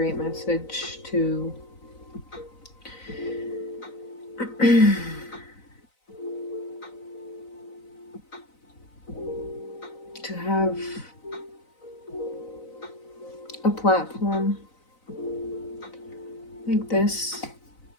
message to to have a platform like this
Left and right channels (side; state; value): right; late; 4.0 ms